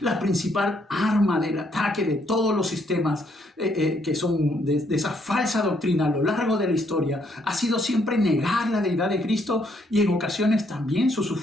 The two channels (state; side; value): normal; both; correlation 0.71